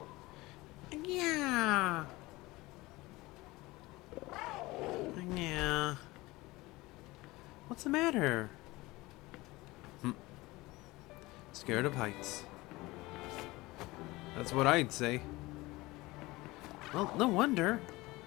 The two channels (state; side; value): quieter; right; 20.8 dB